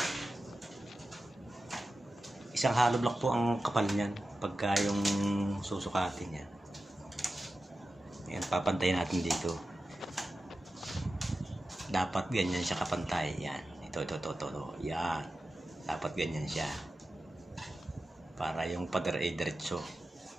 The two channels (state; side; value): normal; both; correlation 0.93